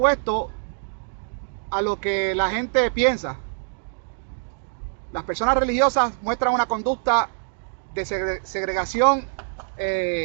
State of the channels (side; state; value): left; silent; digital silence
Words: a lo que la gente piensa. Las personas religiosas muestran una conducta de segregación